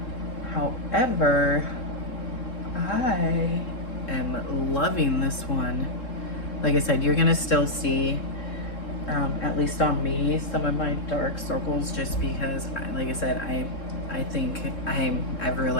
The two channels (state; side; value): late; right; 3.7 ms